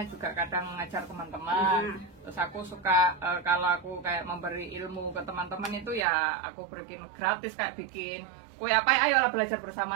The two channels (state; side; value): drops out; left; at 6.1 s